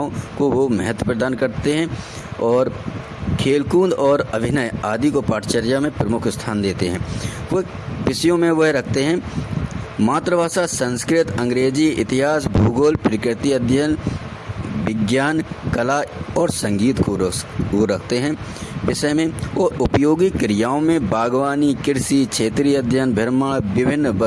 को वो महत्व प्रदान करते हैं, और खेलकूद और अभिनय आदि को पाठचर्या में प्रमुख स्थान देते हैं। वो विषयों में वह रखते हैं मातृभाषा संस्कृत, अंग्रेजी, इतिहास, भूगोल, प्रकृति अध्ययन, विज्ञान, कला और संगीत को वो रखते हैं विषय में। और उपयोगी क्रियाओं में बागवानी, कृषि, क्षेत्रीय अध्ययन, भ्रमण, विभिन्न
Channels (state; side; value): identical; both; correlation 1.00